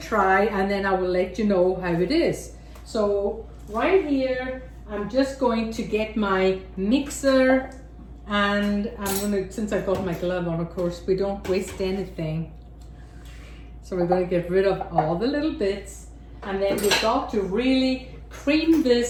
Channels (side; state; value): both; identical; correlation 1.00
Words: and then I will let you know how it is. So right here, I'm just going to get my mixer, and I'm gonna, since I've got my glove on, of course, we don't waste anything. So we're gonna get rid of all the little bits, and then we've got to really cream